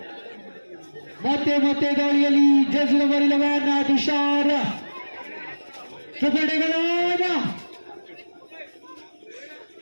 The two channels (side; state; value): both; inverted; correlation -1.00